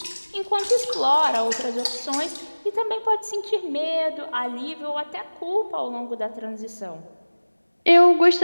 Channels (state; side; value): inverted; both; correlation -1.00